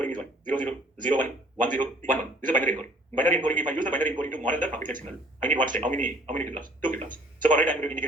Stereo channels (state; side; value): normal; both; correlation 0.56